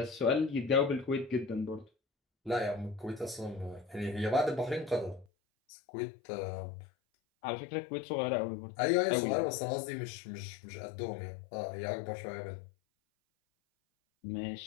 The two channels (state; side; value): drops out; right; at 5.2 s